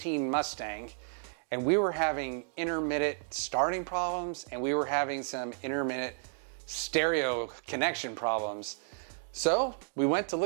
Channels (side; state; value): left; silent; digital silence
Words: Mustang and we were having intermittent starting problems and we were having some intermittent stereo connection problems. So we went to